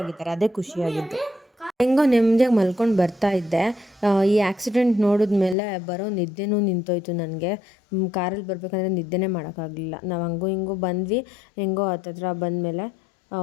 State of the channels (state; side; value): drops out; right; at 5.6 s